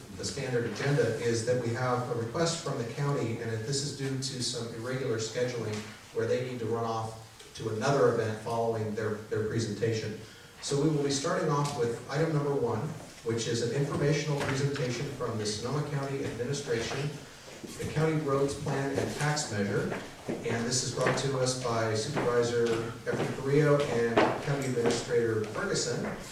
the standard agenda is that we have a request from the county, and this is due to some irregular scheduling where they need to run off to another event following their presentation. So we will be starting off with item number 1, which is an informational presentation from the Sonoma County Administration, the County Roads Plan and Tax Measure. And this is brought to us by Supervisor Efrain Carrillo and County Administrator Ferguson.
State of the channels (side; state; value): both; identical; correlation 1.00